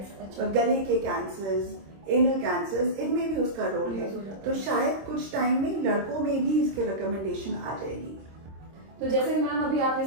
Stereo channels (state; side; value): late; left; 26 ms